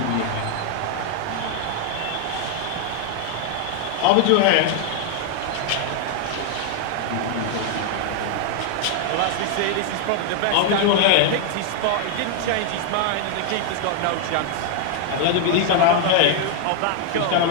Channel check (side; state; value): both; different; correlation 0.00